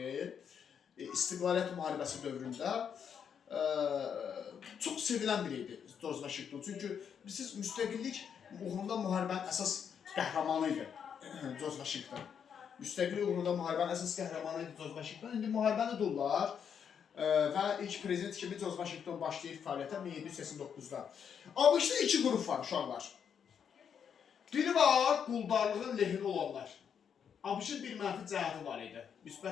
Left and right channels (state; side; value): quieter; right; 7.6 dB